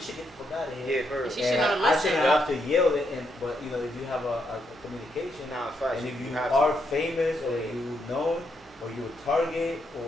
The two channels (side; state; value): both; normal; correlation 0.79